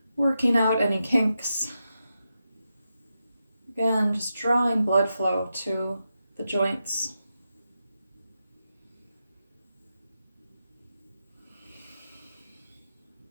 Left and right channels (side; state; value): both; inverted; correlation -0.87